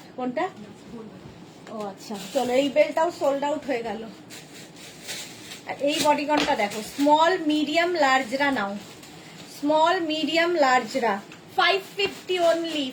কোনটা? ও আচ্ছা, চলো এই বেলটাও সোল্ড আউট হয়ে গেল। আর এই বডিকনটা দেখো, স্মল, মিডিয়াম, লার্জরা নাও, স্মল, মিডিয়াম, লার্জরা। 550 অনলি,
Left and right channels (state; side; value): identical; both; correlation 1.00